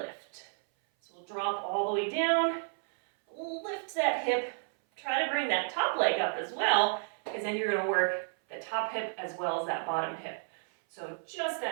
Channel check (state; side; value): silent; left; 57 dB below the other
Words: So we'll drop all the way down, lift that hip, try to bring that top leg up as well, because then you're going to work the top hip as well as that bottom hip. So just